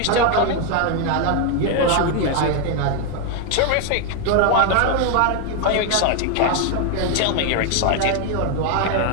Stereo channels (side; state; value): both; different; correlation 0.01